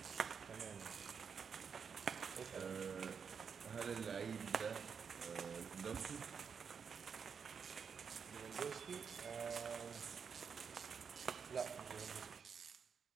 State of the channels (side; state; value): left; quieter; 6.4 dB